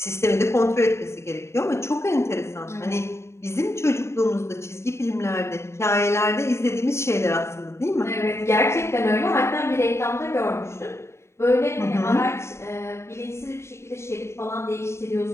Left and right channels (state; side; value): late; right; 0.13 ms